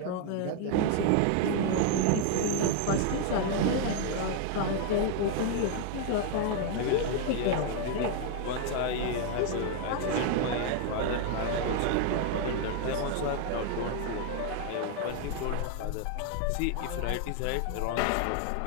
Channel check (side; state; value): both; different; correlation 0.00